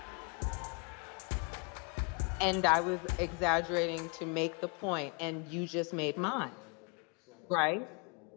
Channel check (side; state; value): right; quieter; 34.3 dB